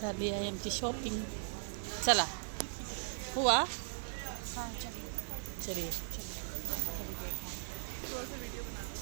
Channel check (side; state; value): left; silent; digital silence